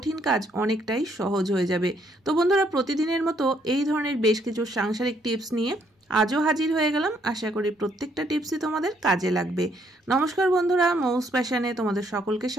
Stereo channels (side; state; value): both; normal; correlation 0.70